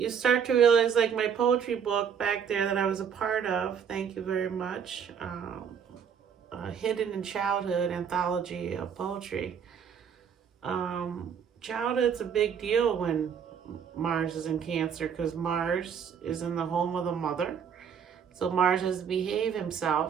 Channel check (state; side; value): quieter; left; 7.4 dB